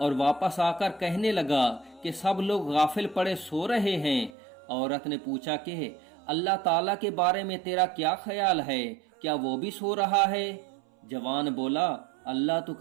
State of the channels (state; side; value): drops out; left; at 4.3 s